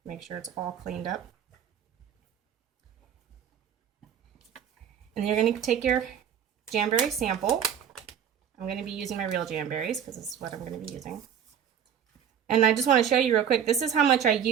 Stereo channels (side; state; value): left; quieter; 8.6 dB